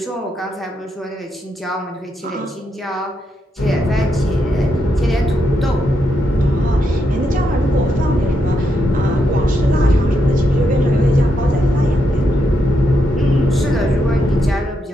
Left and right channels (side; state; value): both; normal; correlation 0.81